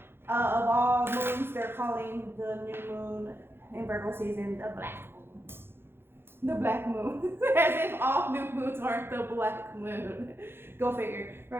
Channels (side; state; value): left; late; 0.11 ms